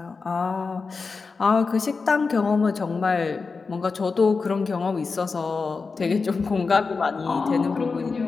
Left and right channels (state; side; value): quieter; right; 4.5 dB